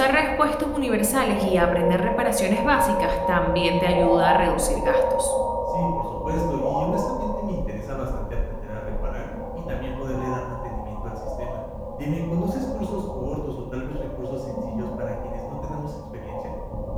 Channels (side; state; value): both; identical; correlation 1.00